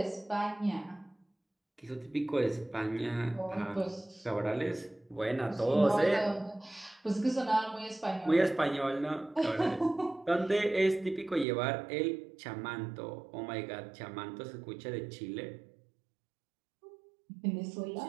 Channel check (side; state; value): left; drops out; at 11.5 s